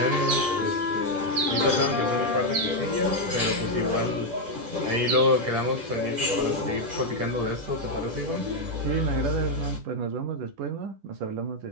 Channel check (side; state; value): left; late; 10 ms